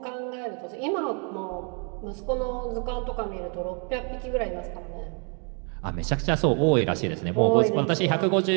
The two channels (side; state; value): left; quieter; 38.3 dB